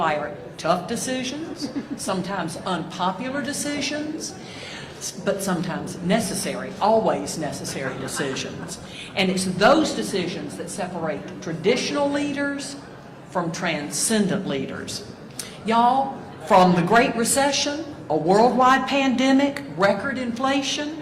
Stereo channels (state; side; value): identical; both; correlation 1.00